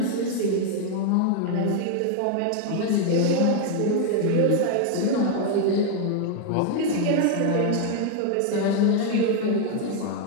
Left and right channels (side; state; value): both; different; correlation 0.00